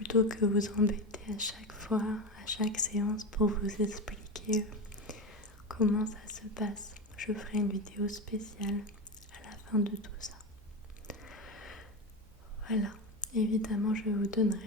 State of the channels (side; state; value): both; normal; correlation 0.20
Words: que vous embêter à chaque fois, à chaque séance pour vous expliquer comment ça se passe. Je ferai une vidéo spéciale à la fin de tout ça. Voilà. Évidemment, je vous